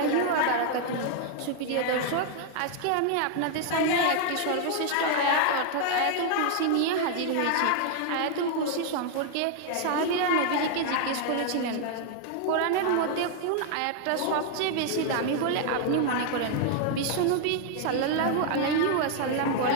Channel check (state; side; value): different; both; correlation 0.00